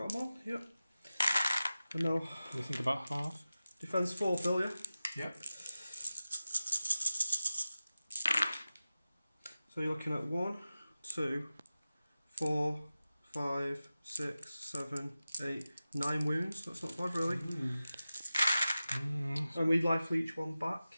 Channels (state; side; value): inverted; both; correlation -0.95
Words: them all? Yep. And now, What do you think about half? defence 4, Phil, yeah? Yep. So you're looking at 1, 2, 4, 5, 6, 7, 8, 9 wounds. That's not bad, really. And we life each one back.